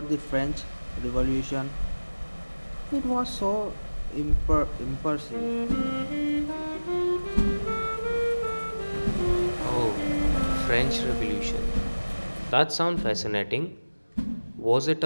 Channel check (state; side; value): inverted; both; correlation -1.00